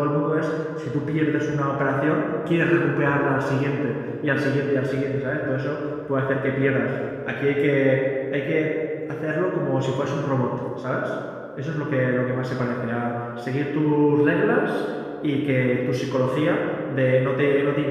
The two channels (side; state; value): both; identical; correlation 1.00